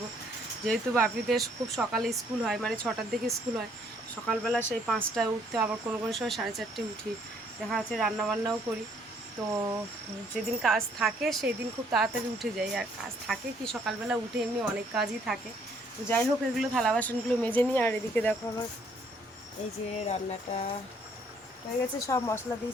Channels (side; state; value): both; normal; correlation 0.65